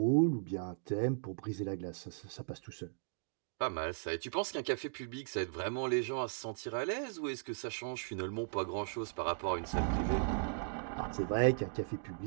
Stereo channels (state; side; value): silent; left; digital silence